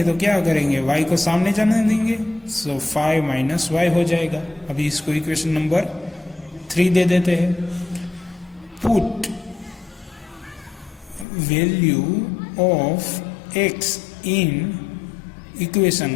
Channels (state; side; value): drops out; right; at 11.2 s